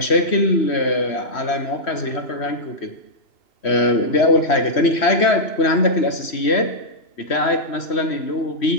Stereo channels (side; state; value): right; late; 3.1 ms